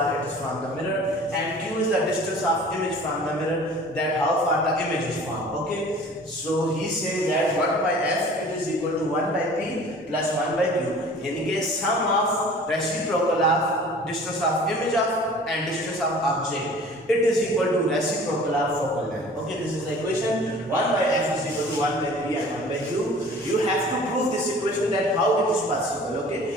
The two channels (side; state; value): both; normal; correlation 0.46